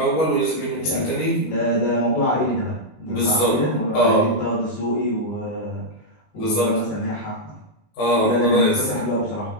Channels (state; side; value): late; right; 19 ms